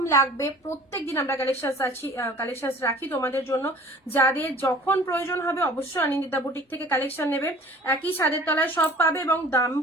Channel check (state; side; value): normal; both; correlation 0.47